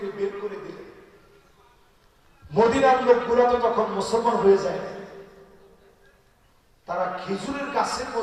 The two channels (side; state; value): both; identical; correlation 1.00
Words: বের করে দিলেন। মদিনার লোকগুলো তো তখন মুসলমান হয়ে যায়, তারা খেজুরের গাছের